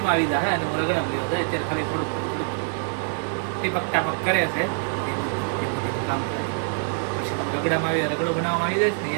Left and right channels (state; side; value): silent; left; 62 dB below the other